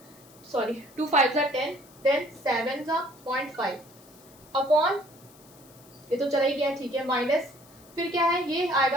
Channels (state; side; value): noise; left; hiss, 25 dB below the sound